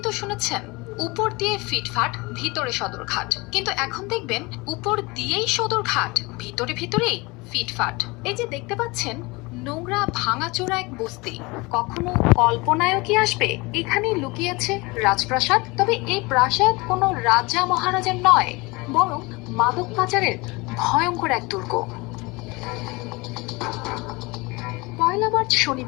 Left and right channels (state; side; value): quieter; right; 24.9 dB